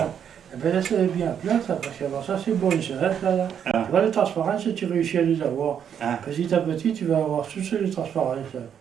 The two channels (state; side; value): quieter; left; 8.4 dB